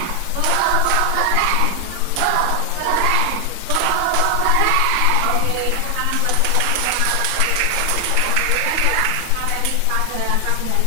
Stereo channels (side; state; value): both; different; correlation 0.00